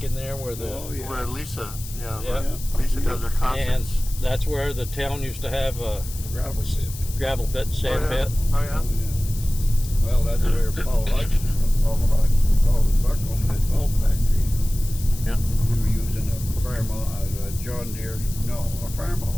in there where the Oh, yeah. Where Lisa, Yeah. Lisa does her and concerts. that's where the town used to have a Gravel pit. gravel pit, sand Oh, yeah. pit. Oh, Oh, yeah? yeah. Well, that's where Paul Hodgson was Buckholm, that vault factory. Yeah. We were using a John Deere, a farm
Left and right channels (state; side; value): noise; left; hiss, 14 dB below the sound